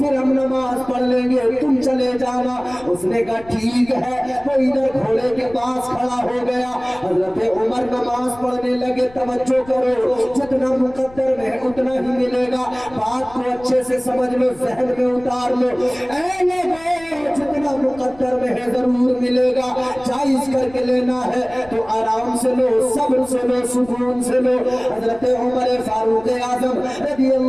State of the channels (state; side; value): noise; left; rumble, 22 dB below the sound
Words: ہم نماز پڑھ لیں گے، تم چلے جانا۔ اس نے کہا ٹھیک ہے، وہ ادھر گھوڑے کے پاس کھڑا ہو گیا۔ حضرت عمر نماز پڑھنے لگے۔ توجہ کرو، جتنا مقدر میں اتنا ہی ملے گا، بات کو اچھے سے سمجھ لو، ذہن میں اتار لو۔ اے لوگوں، جتنا مقدر میں ہے ضرور ملے گا، جائز کر کے لینا ہے تو آرام سے لو، صبر سے لو، سکون سے لو۔ حضرت عمر فاروق اعظم رضی